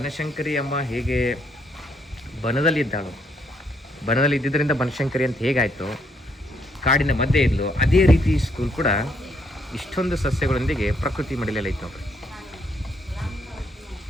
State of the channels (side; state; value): both; normal; correlation 0.72